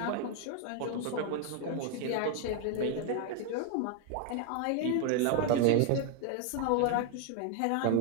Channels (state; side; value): different; both; correlation 0.01